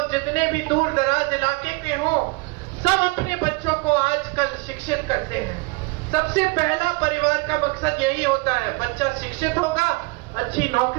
जितने भी दूर दराज इलाके के हो, सब अपने बच्चों को आजकल शिक्षित करते हैं। सबसे पहला परिवार का मकसद यही होता है, बच्चा शिक्षित होगा, अच्छी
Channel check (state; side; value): quieter; left; 26.7 dB